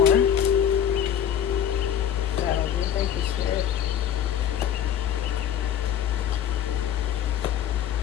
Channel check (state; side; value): quieter; right; 9.6 dB